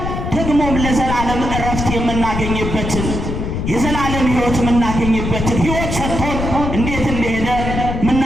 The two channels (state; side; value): noise; left; rumble, 3 dB below the sound